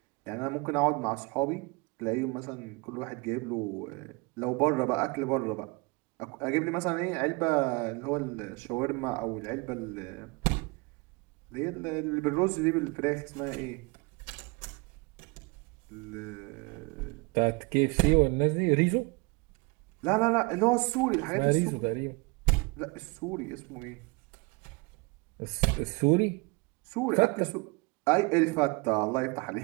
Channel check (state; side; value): quieter; left; 27.6 dB